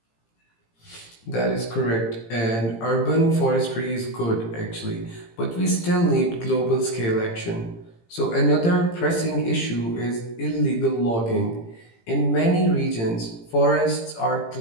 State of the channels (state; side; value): late; right; 18 ms